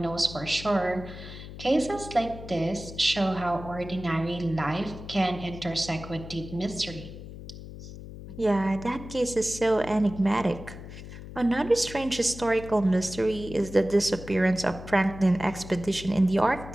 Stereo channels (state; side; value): noise; left; hum, 13 dB below the sound